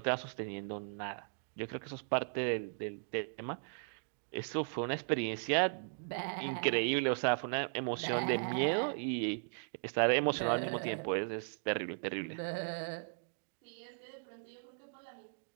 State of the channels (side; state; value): left; silent; digital silence